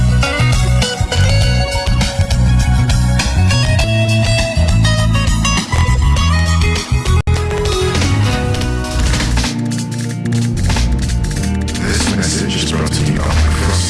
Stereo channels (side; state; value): both; identical; correlation 1.00